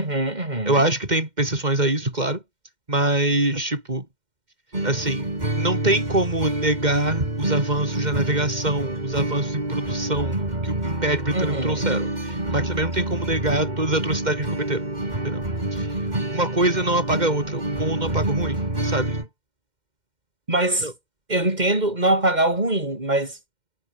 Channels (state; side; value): late; left; 2.1 ms